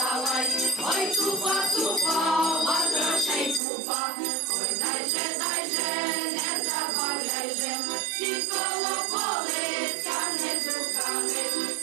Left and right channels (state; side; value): drops out; left; at 3.6 s